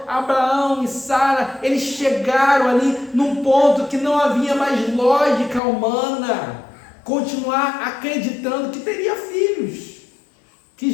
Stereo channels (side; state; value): right; drops out; at 5.6 s